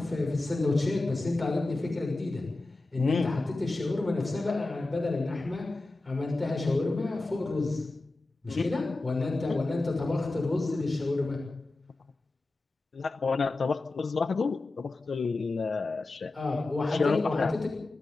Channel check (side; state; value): right; quieter; 3.1 dB